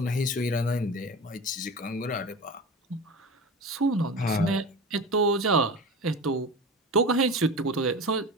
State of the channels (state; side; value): normal; both; correlation 0.30